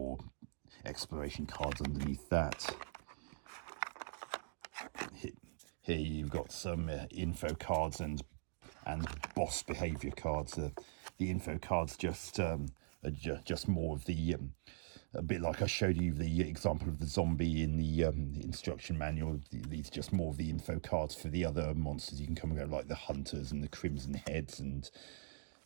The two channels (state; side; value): silent; left; digital silence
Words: exploration cards underneath that. Here you've got some info cards and boss behavior cards. The info cards just more of the a bit like I showed you the example of the zombie in the instruction manual. These are just more of the info cards for the other monsters you can come and go, like the hunters and the crimson heads and